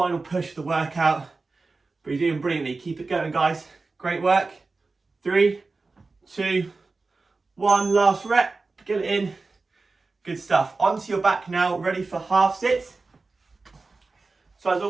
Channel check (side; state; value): left; quieter; 3.8 dB